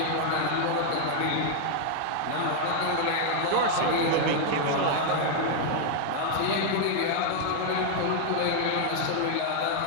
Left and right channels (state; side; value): different; both; correlation 0.00